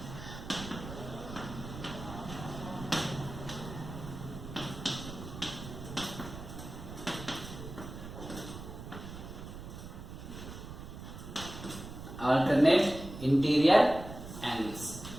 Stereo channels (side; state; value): right; noise; rumble, 11 dB below the sound